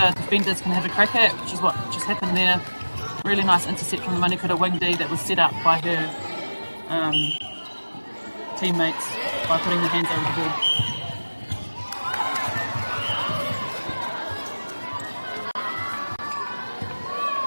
defenders can have a crack at, which is what just happened there. Really nice intercept from the Manukura wing D that was set up by her teammates by putting their hands over the ball.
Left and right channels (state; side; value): inverted; both; correlation -1.00